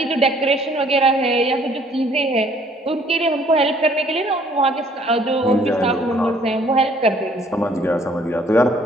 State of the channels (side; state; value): both; normal; correlation 0.60